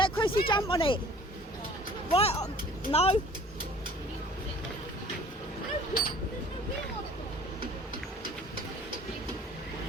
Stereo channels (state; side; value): normal; both; correlation 0.50